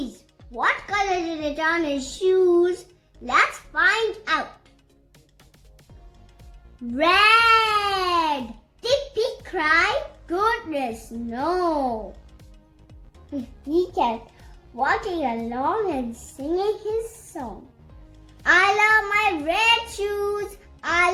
What color did it on his shoes? Let's find out. Red! Did Pete cry? Goodness, no. He kept walking along and singing his song. I love my red shoes. I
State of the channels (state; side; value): identical; both; correlation 1.00